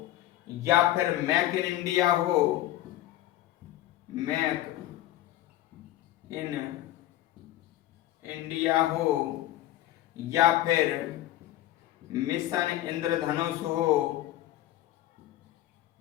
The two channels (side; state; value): right; quieter; 14.6 dB